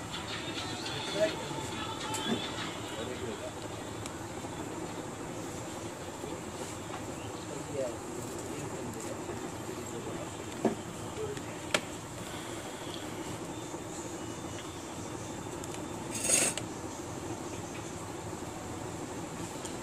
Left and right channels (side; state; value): both; identical; correlation 1.00